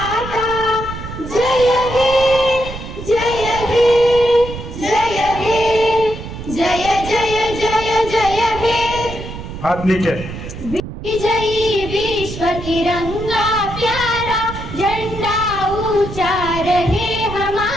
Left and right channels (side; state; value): right; noise; rumble, 10 dB below the sound